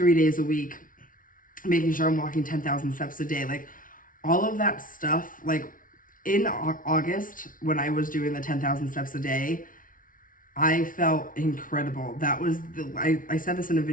days a week, making sure I'm walking 10,000 steps a day, like all of that stuff. Like in August, when I was doing the 10,000 steps a day, I felt incredible. That was I said this in a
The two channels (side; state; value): right; late; 0.39 ms